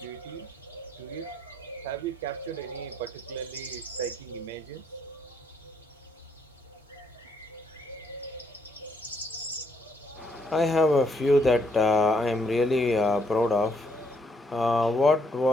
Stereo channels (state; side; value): normal; both; correlation 0.72